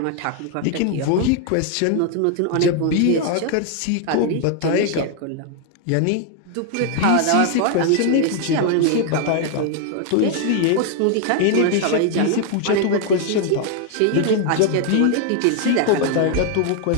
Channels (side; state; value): both; different; correlation 0.00